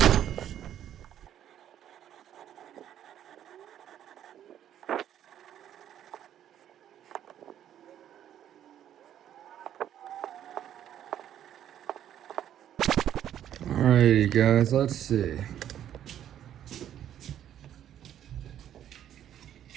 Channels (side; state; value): left; quieter; 10.7 dB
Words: Alrighty guys, let's see.